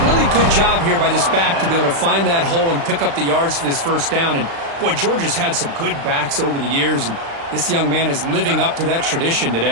really good job here by this back to be able to find that hole and pick up the yards for this first down. And, boy, Georgia's had some good backs over the years, and this young man is living up to that tradition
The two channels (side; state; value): left; late; 36 ms